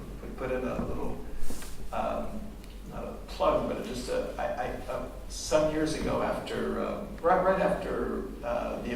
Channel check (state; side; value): identical; both; correlation 1.00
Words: put in a little, not a plug, but just some years ago after, right after the